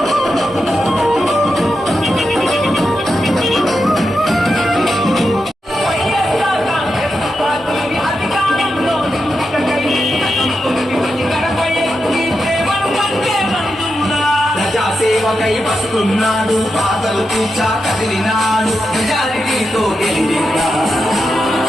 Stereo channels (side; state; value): both; normal; correlation 0.87